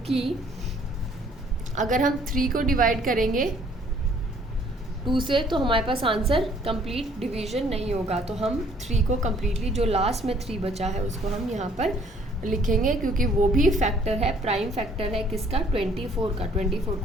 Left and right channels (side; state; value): both; normal; correlation 0.61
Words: अगर हम 3 को डिवाइड करेंगे 2 से तो हमारे पास आंसर कंप्लीट डिवीजन नहीं होगा। तो हम 3 को कम्प्लीटली, जो लास्ट में 3 बचा है उसको हम यहाँ पर लिखेंगे, क्योंकि वो भी फैक्टर है, प्राइम फैक्टर है किसका, 24 का। 24